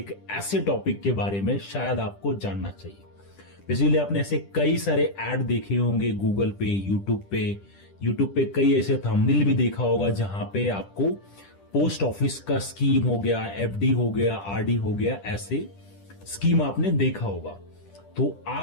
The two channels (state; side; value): late; right; 10 ms